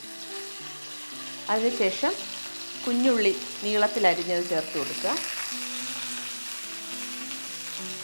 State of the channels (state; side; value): inverted; both; correlation -1.00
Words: അതിനുശേഷം കുഞ്ഞുള്ളി നീളത്തിലരിഞ്ഞത് ചേർത്ത് കൊടുക്കുക.